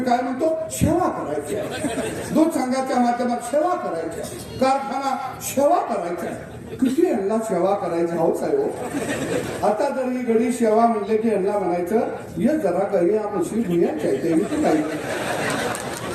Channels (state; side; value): identical; both; correlation 1.00